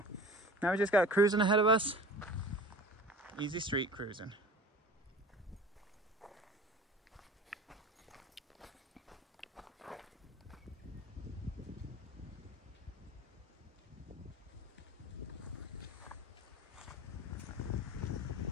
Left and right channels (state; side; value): normal; both; correlation 0.39